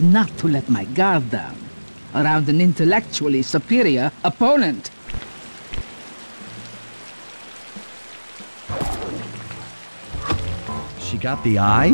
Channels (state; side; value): inverted; both; correlation -1.00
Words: to let my guard down around an intellectually superior opponent. She got the